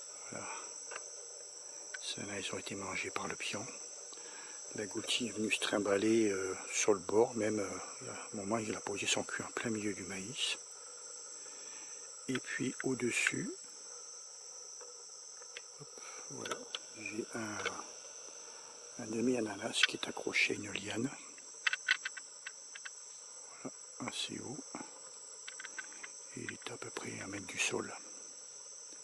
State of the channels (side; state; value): both; identical; correlation 1.00